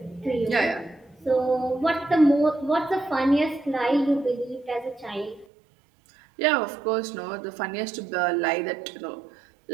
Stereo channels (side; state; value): left; drops out; at 5.5 s